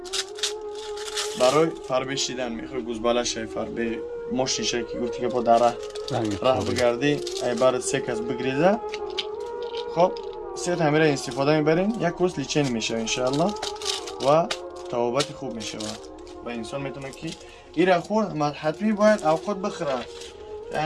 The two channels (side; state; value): both; identical; correlation 1.00